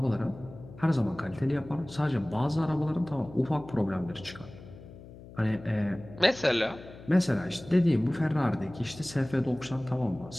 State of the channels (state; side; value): noise; left; hum, 17 dB below the sound